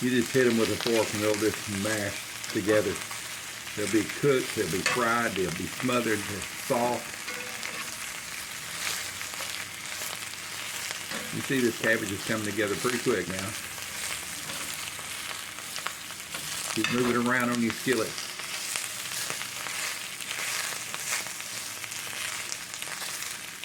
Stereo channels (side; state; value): both; identical; correlation 1.00